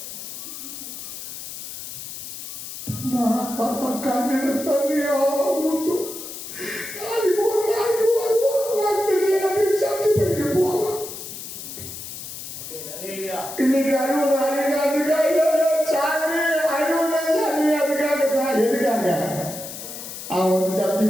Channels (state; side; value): noise; left; hiss, 10 dB below the sound